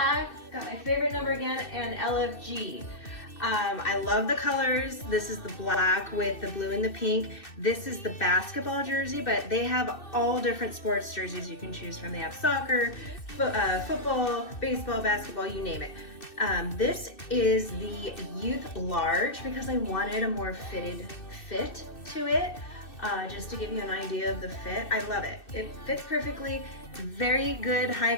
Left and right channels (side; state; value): right; late; 2.6 ms